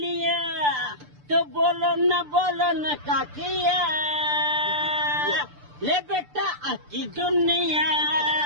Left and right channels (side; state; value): left; late; 6.8 ms